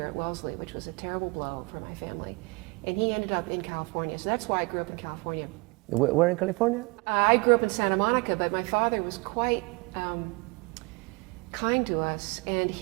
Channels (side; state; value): left; quieter; 28.3 dB